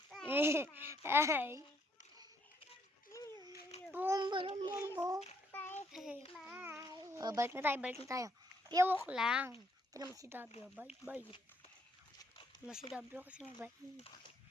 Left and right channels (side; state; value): both; normal; correlation 0.70